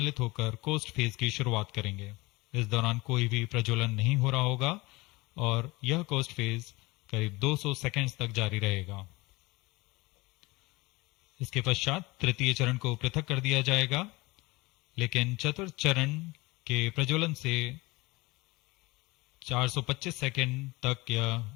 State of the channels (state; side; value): quieter; right; 22.9 dB